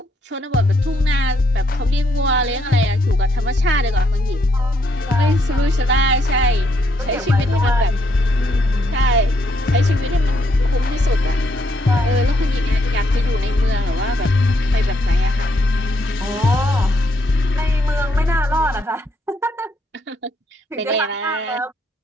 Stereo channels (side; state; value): both; normal; correlation 0.74